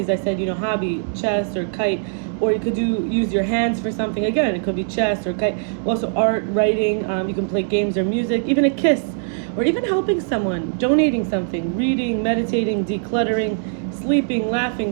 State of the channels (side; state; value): left; silent; digital silence